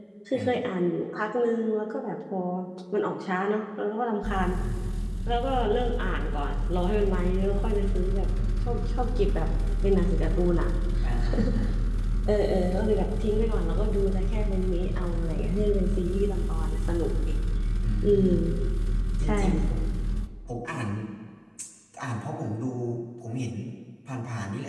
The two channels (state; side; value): identical; both; correlation 1.00